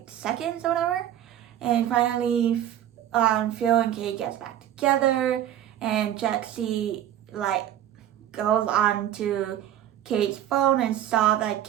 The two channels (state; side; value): quieter; left; 11.3 dB